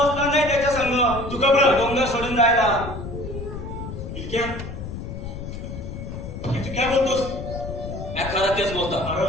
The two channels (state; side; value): noise; left; rumble, 8 dB below the sound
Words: नाही त्याच्या संग. तू घबरा. डोंगर सोडून जायला. इतक्या तू काय बोलतोस? मी खरं तेच बोलतो. अरे